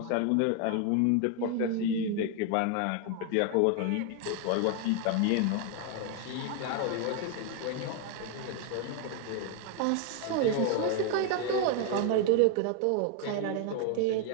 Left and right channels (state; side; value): different; both; correlation 0.01